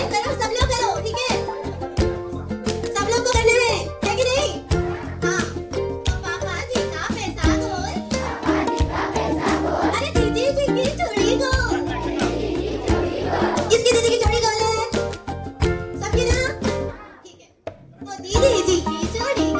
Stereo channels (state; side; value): identical; both; correlation 1.00